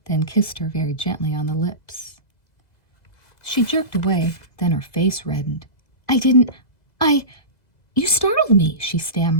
then kissed her very gently on the lips. She jerked away, then her face reddened. You startled me," she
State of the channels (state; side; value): late; right; 2.0 ms